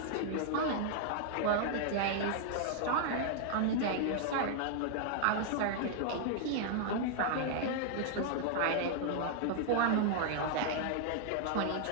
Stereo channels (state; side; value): different; both; correlation -0.01